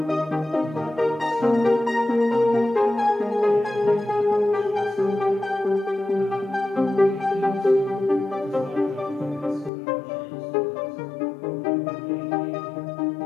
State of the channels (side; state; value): right; drops out; at 9.7 s